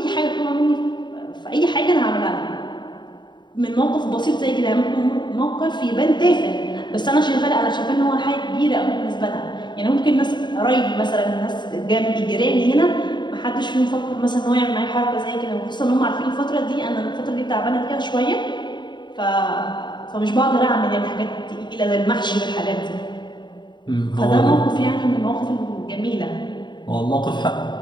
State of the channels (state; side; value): late; right; 0.22 ms